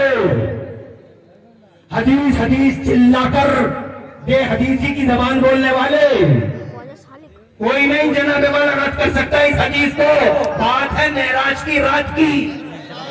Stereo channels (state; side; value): identical; both; correlation 1.00